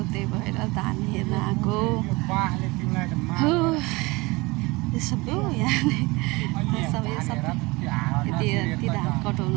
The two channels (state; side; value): quieter; left; 23.8 dB